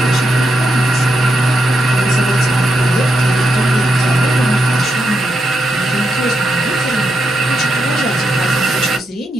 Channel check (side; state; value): both; normal; correlation 0.83